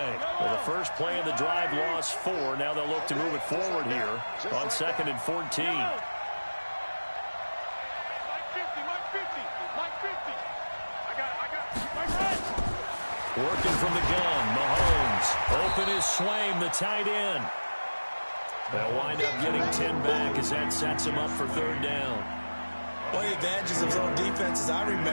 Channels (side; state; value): both; inverted; correlation -1.00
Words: Well, the first play of the drive lost 4. Now they'll look to move it forward here on 2nd and 14. Working from the gun, Mahomes. Open is Swaim, the tight end. They'll wind up getting 10 back as that sets him up for 3rd down. One of the advantages of zone defense, as I